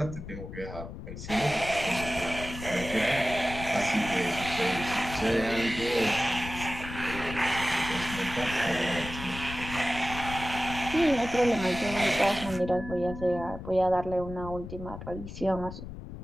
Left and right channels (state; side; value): noise; left; rumble, 10 dB below the sound